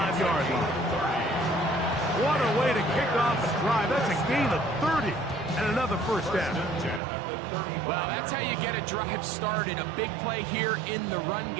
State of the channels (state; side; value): drops out; left; at 7.0 s